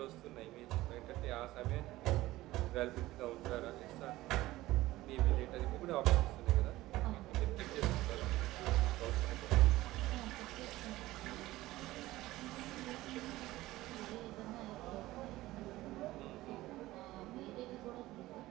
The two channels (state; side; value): quieter; left; 17.2 dB